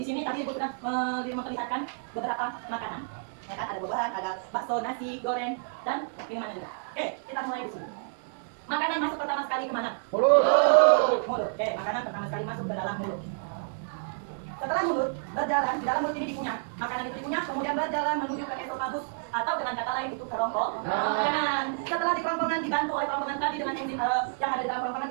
sini tadi Ibu sudah memperlihatkan beberapa makanan. Ya kan, ada buah-buahan, ada bakso, nasi, goreng, dan minuman juga. Oke, kita mulai di sini. Makanan masuk pertama sekali kemana? Mulut. Mulut. Oke, makanan pertama sekali masuk ke dalam mulut. Setelah mulut berjalan, di dalam mulut ini dikunyah. Makanan itu dikunyah, kemudian berjalan menuju ke esofagus atau dengan kata lain itu kerongkongan. Setelah di kerongkongan dibantu oleh kerongkongan tadi dengan enzim yang ada di dalam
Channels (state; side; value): silent; left; digital silence